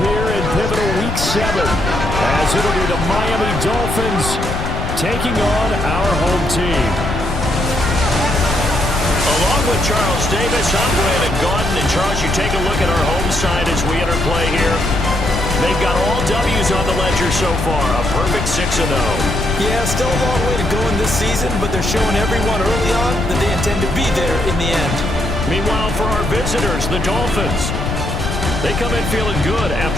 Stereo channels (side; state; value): left; noise; rumble, 4 dB below the sound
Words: here in pivotal Week 7 as it'll be the Miami Dolphins taking on our home team. Along with Charles Davis, I'm Brandon Gaudin. And Charles, you take a look at our home side as we enter play here. They've got all W's on the ledger so far, a perfect 6-0. Yeah, still a long way to go in this season, but they're showing everyone early on that they intend to be there in the end. Meanwhile, for our visitors, the Dolphins, they come in feeling good